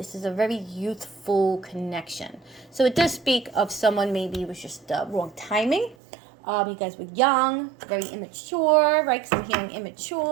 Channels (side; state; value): left; drops out; at 6.0 s